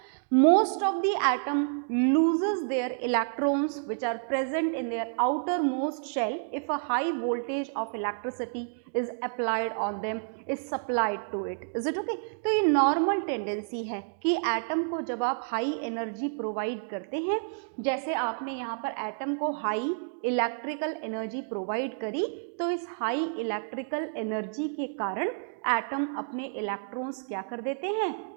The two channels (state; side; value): silent; left; digital silence